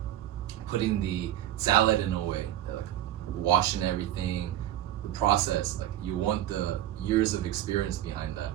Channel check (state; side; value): quieter; left; 12.5 dB